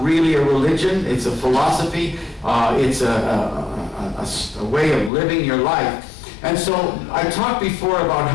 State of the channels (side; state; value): right; drops out; at 5.1 s